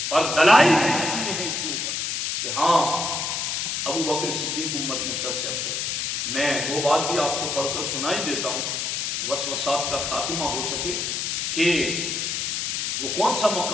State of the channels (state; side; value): noise; left; hiss, 1 dB below the sound